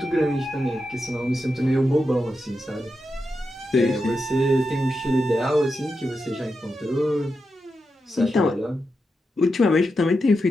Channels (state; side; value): normal; both; correlation 0.87